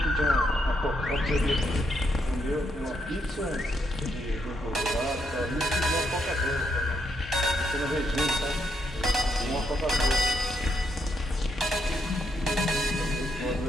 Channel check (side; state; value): both; normal; correlation 0.77